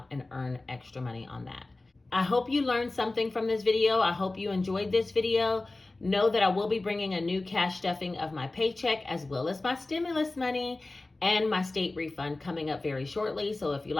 and earn extra money on that. I hope you learned something from this video. I hope you enjoyed this video. Know that I will be bringing a new cash stuffing of my paycheck as well as my stimulus money and my state refund coming up very shortly. So if you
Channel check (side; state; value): right; quieter; 3.1 dB